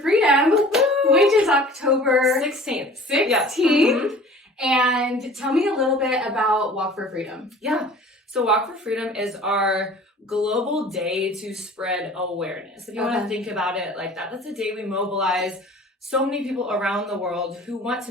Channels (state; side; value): normal; both; correlation 0.46